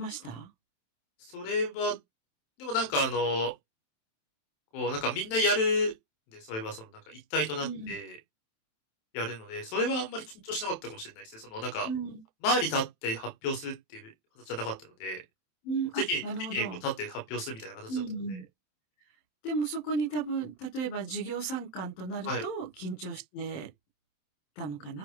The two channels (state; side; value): late; right; 27 ms